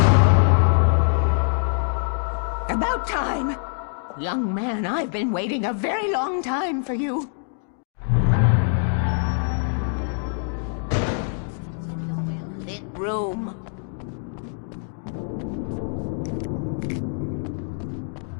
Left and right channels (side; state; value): right; silent; 62 dB below the other